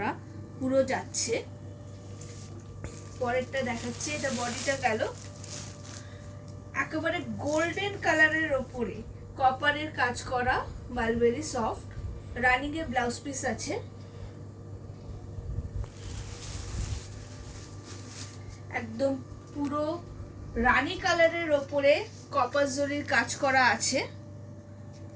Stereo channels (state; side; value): identical; both; correlation 1.00